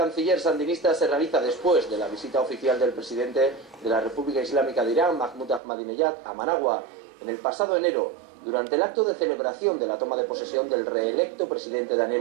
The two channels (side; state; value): left; drops out; at 5.6 s